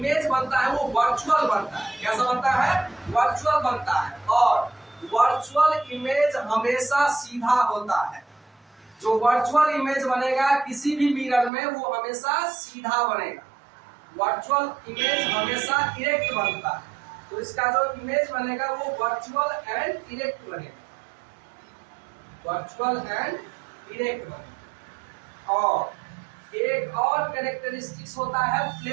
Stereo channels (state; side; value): drops out; left; at 11.5 s